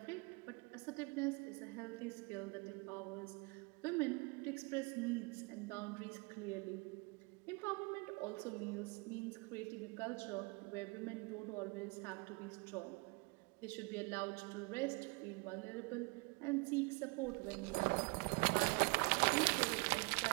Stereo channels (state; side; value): quieter; left; 29.4 dB